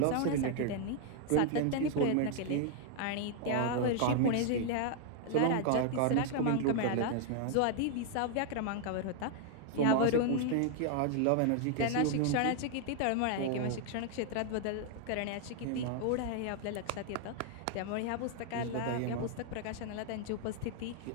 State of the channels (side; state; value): both; different; correlation 0.00